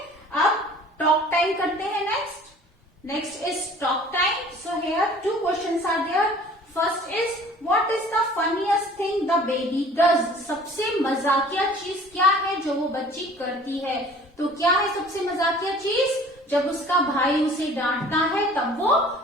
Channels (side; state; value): both; normal; correlation 0.49